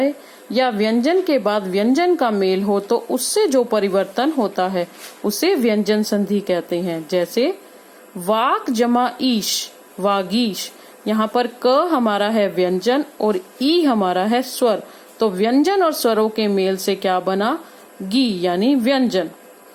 या व्यंजन के बाद व्यंजन का मेल हो तो उससे जो परिवर्तन होता है उसे व्यंजन संधि कहते हैं। जैसे वाक जमा ईश वागीश। यहाँ पर क हमारा है व्यंजन और ई हमारा है स्वर, तो व्यंजन और स्वरों के मेल से क्या बना गी यानी व्यंजन।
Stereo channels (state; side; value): identical; both; correlation 1.00